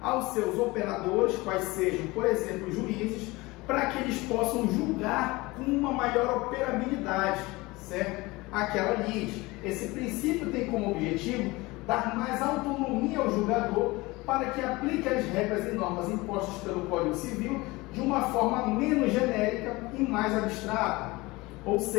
aos seus operadores, quais sejam, por exemplo, juízes, para que eles possam julgar com uma maior operabilidade, certo? Aquela lide. Esse princípio tem como objetivo dar mais autonomia ao julgador para que aplique as regras e normas impostas pelo Código Civil de uma forma menos genérica e mais abstrata. Ou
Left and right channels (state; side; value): quieter; right; 22.1 dB